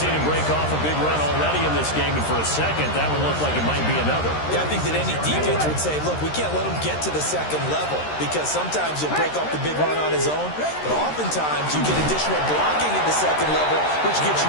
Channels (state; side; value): late; right; 13 ms